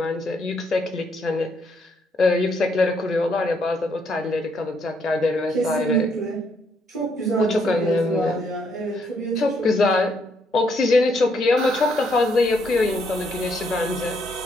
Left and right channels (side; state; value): both; normal; correlation 0.73